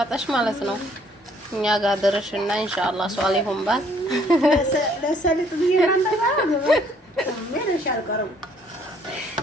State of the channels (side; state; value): both; normal; correlation 0.63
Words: ማለት ነው። እኛ ጋር ድረሽና ኢንሻአላህ ሷሊሁን ባል ለሰሊጥ ቢራንዳ ምን ይሻልቀረው